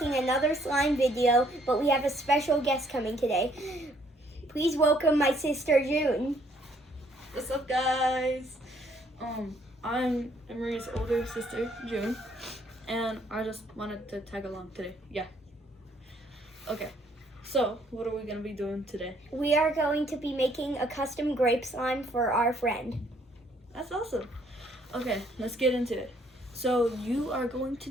another slime video, but we have a special guest coming today. Please welcome my sister June. What's up guys? I'm Marie's older sister, June, and I just wanted to tag along today. Yeah. Okay, so what are we gonna be doing today? We are going to be making a custom grape slime for our friend. That's awesome. Okay, let's get into it. So you are going to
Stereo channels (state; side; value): normal; both; correlation 0.66